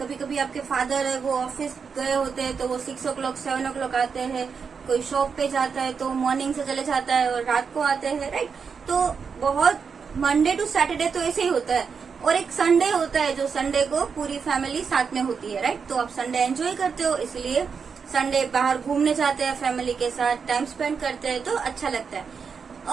कभी आपके फादर है वो ऑफिस गए होते हैं तो वो 6 o'clock 7 o'clock आते हैं, कोई शॉप पे जाता है तो मॉर्निंग से चले जाता है और रात को आते हैं, राइट? तो बहुत मंडे टू सैटरडे तो ऐसे ही होता है, और एक संडे होता है जो संडे को पूरी फैमिली साथ में होती है, राइट? तो आप संडे एंजॉय करते हो, इसलिए संडे बाहर घूमने जाते हैं फैमिली के साथ, टाइम स्पेंड करते हैं तो अच्छा लगता है।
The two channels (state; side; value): quieter; left; 5.9 dB